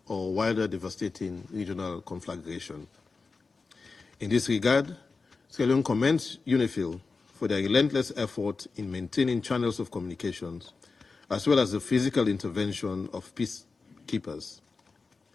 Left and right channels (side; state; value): right; quieter; 4.3 dB